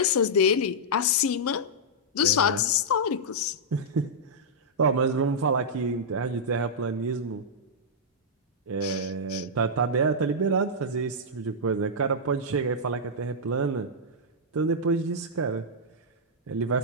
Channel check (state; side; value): normal; both; correlation -0.09